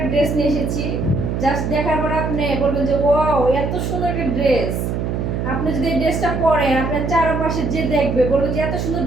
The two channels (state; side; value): noise; right; hum, 2 dB below the sound